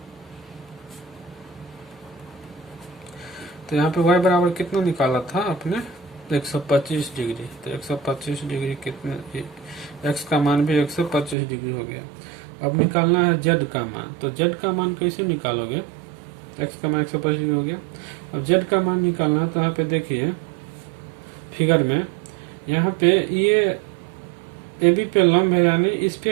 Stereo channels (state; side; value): drops out; left; at 11.4 s